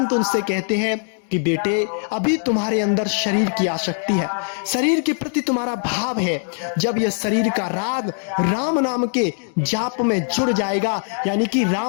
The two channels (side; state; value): right; silent; 58 dB below the other